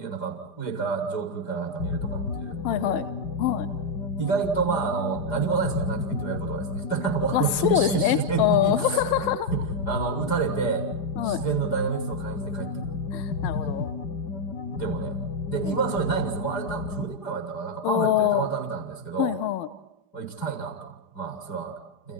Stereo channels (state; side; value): late; right; 4.9 ms